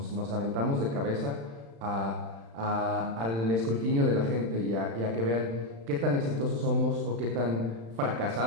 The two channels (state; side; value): late; left; 35 ms